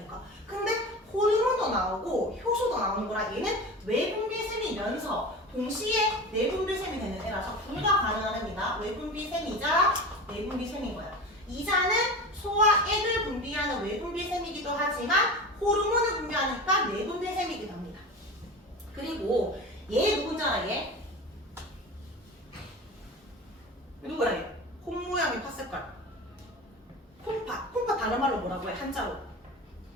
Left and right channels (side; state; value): both; normal; correlation 0.31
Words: 근데 호르몬도 나오고 효소도 나오는 거라 얘는 외분비샘이면서 동시에 내분비샘이 되는 애라서 둘 다 가능한 애입니다. 외분비샘이자 내분비샘인 거야. 이자는 소화액을 분비하는 외분비샘이기도 하지만 호르몬을 분비하니까 내분비샘이기도 합니다. 그리고 얘 누군지 알아? 얘? 누구야 얘? 콩 모양의 팥색깔. 콩팥. 콩팥 다른 말로 뭐라고 해? 한자로.